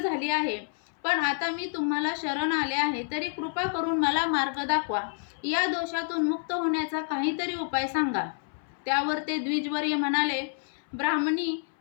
आहे. पण आता मी तुम्हाला शरण आले आहे, तरी कृपा करून मला मार्ग दाखवा. या दोषातून मुक्त होण्याचा काहीतरी उपाय सांगा. त्यावर ते द्विजवर्य म्हणाले, ब्राह्मणी,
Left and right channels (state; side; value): silent; right; 58 dB below the other